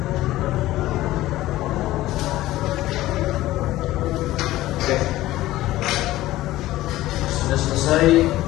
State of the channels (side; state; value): right; quieter; 16.1 dB